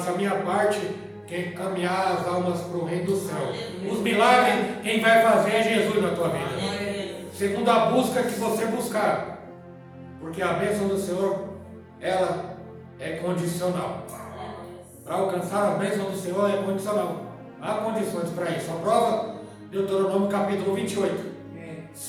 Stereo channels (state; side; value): identical; both; correlation 1.00